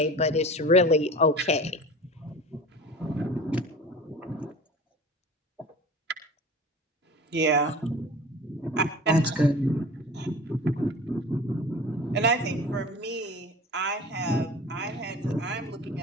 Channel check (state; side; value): normal; both; correlation 0.38